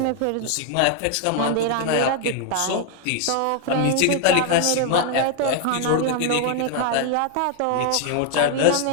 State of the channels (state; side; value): different; both; correlation 0.00